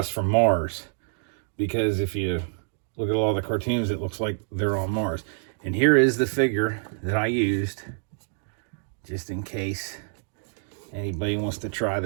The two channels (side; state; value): left; silent; 59 dB below the other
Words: from Mars. Because if you look at all the cartoons, it looks like they're on Mars. And here is the figure that I used, just in case anybody wants to try